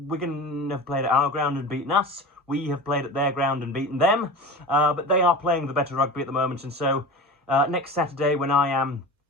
have played at our ground and beaten us. We have played at their ground and beaten them. But they are playing the better rugby at the moment, and so next Saturday, when I am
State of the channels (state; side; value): normal; both; correlation 0.32